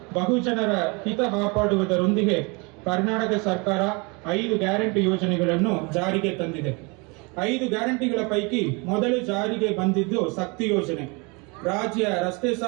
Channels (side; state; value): left; quieter; 29.5 dB